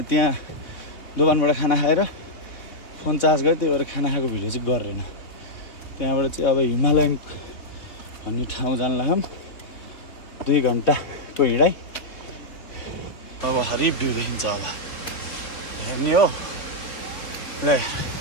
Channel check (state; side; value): late; right; 3.6 ms